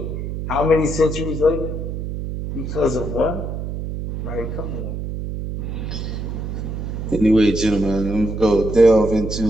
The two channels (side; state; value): right; noise; hum, 5 dB below the sound